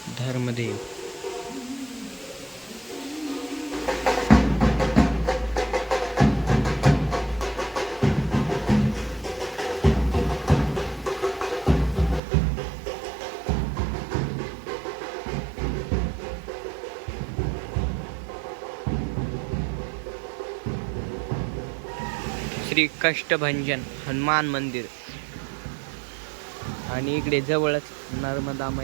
धर्मदेव, श्री कष्टभंजन हनुमान मंदिर, आणि इकडे जवळच नर्मदा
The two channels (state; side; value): drops out; left; at 12.2 s